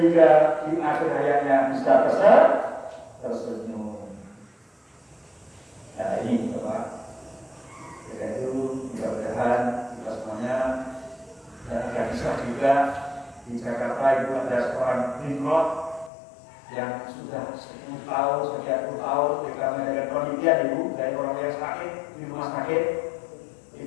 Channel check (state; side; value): drops out; right; at 16.1 s